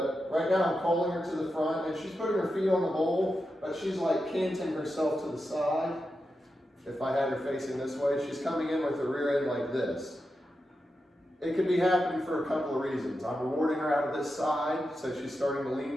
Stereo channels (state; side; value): normal; both; correlation 0.89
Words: right now I'm calling her to the front and she's putting her feet on the bowl, but she's like canting herself to the side. If I had her facing this way, she's coming in with the rear end like this. It could be happening for a couple of reasons. I'm rewarding her out of this side, so she's starting to lean